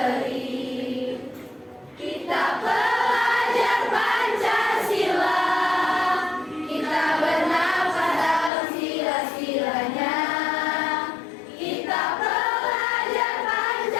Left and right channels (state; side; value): drops out; right; at 8.5 s